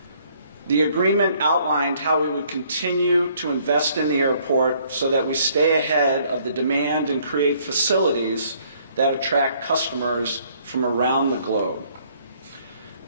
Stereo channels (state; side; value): inverted; both; correlation -0.63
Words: The agreement outlined how we would continue to invest in the airport so that we stay ahead of the demand and create facilities that attract customers from around the globe.